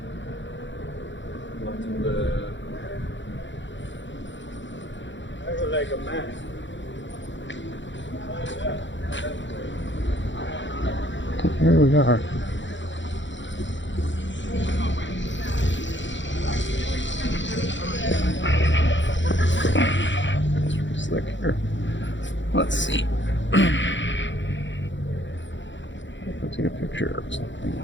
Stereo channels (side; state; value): right; late; 0.54 ms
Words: Like a man. Here we are. It's pretty slick here. Let's see. I'll take a picture of something